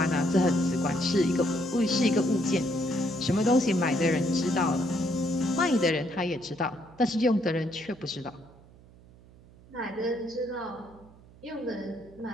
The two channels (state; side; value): noise; right; hum, 24 dB below the sound